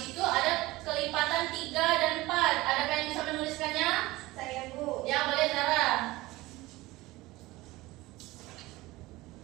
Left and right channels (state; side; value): quieter; left; 19.6 dB